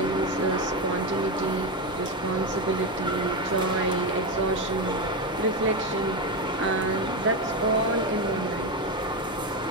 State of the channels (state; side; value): normal; both; correlation 0.13